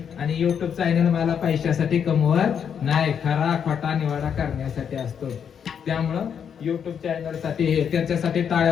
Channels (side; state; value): right; quieter; 7.7 dB